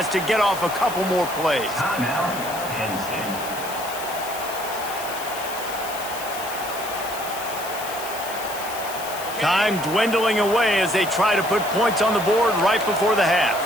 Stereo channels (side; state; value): left; noise; hiss, 11 dB below the sound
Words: to get off a couple more plays. Time dwindling away as they try to put points on the board right before the half.